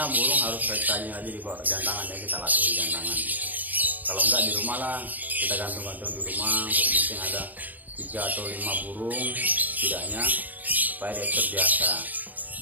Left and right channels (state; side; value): late; left; 0.082 ms